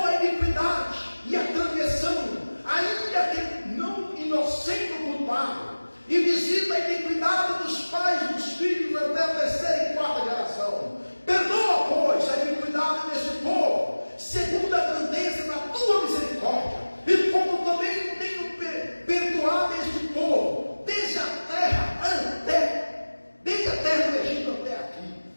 a iniquidade e a transgressão, ainda que não inocente o culpado, e visita a iniquidade dos pais e dos filhos até a terceira e quarta geração. Perdoa, pois, a iniquidade desse povo, segundo a grandeza da tua misericórdia, e como também tenho perdoado este povo, desde a terra do Egito até aqui.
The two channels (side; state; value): both; inverted; correlation -1.00